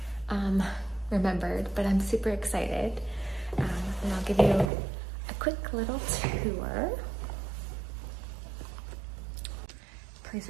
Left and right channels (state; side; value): drops out; left; at 4.7 s